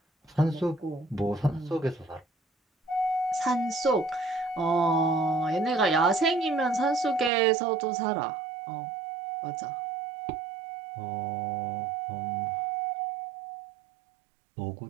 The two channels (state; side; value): drops out; left; at 7.3 s